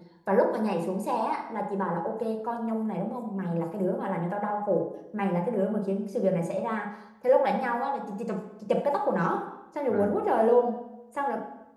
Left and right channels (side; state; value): both; identical; correlation 1.00